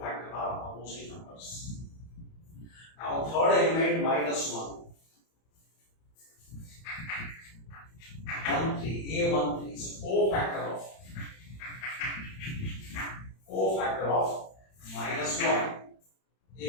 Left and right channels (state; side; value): late; right; 31 ms